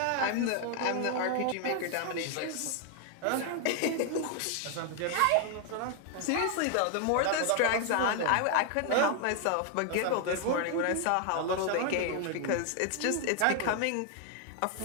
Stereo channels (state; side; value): different; both; correlation 0.00